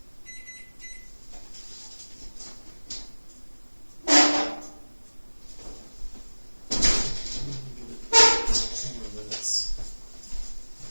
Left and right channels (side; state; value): both; inverted; correlation -1.00